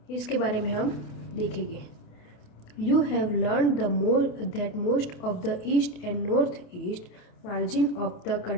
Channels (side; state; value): right; late; 28 ms